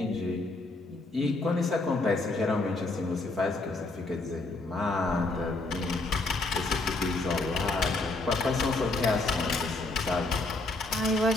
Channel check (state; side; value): quieter; right; 3.1 dB